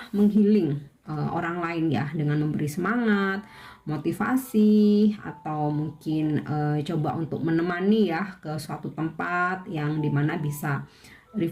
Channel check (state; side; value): identical; both; correlation 1.00